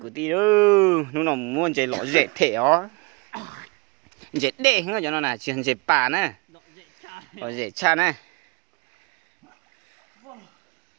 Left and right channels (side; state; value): left; quieter; 28.0 dB